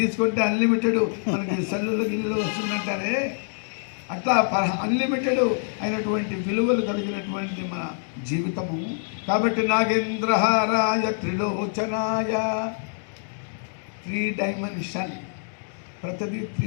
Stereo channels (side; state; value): right; silent; digital silence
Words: అన్లిమిటెడ్ మనకి సెల్లులో గిల్లులో వస్తుందంటారే, అట్లా అన్లిమిటెడ్ అయినటువంటి విలువలు కలిగినటువంటి మన జీవితము. కాబట్టి నాగేంద్రహారాయ త్రిలోచనాయ, 3 డైమెన్షన్ ప్రతిదీ